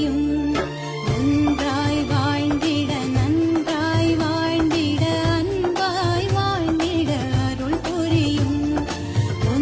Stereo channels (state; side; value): identical; both; correlation 1.00